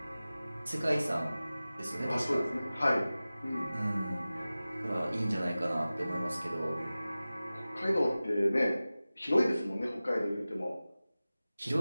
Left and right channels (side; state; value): both; inverted; correlation -0.97